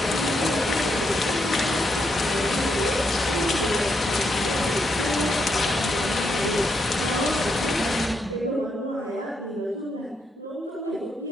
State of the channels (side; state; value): both; normal; correlation 0.79